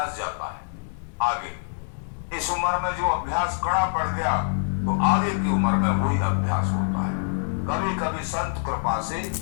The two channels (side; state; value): right; silent; digital silence